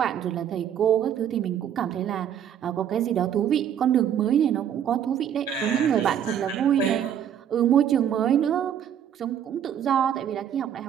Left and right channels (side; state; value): left; quieter; 9.4 dB